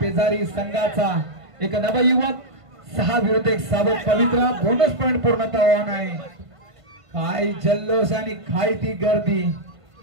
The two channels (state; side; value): late; left; 1.5 ms